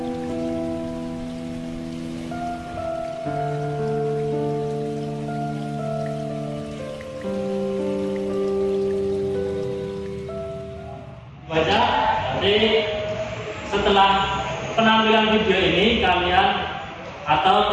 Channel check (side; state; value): both; identical; correlation 1.00